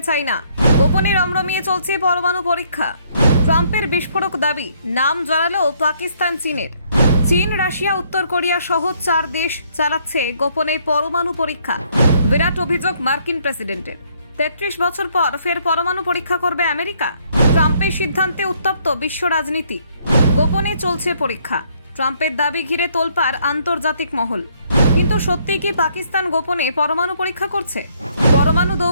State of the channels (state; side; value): inverted; both; correlation -0.68